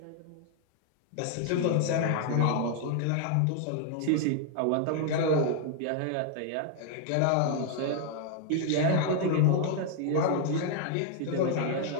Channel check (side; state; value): both; different; correlation 0.00